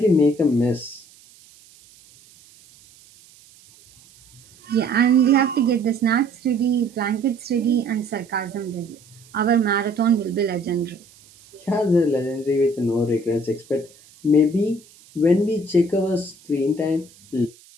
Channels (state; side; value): noise; right; hiss, 26 dB below the sound